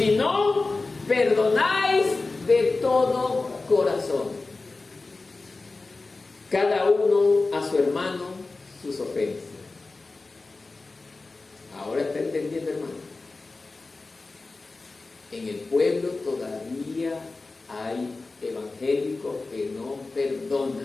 no perdonáis de todo corazón, cada uno a su hermano sus ofensas. Ahora está entendiendo, hermano. En el pueblo todavía hay evangélicos que no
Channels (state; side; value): quieter; right; 3.6 dB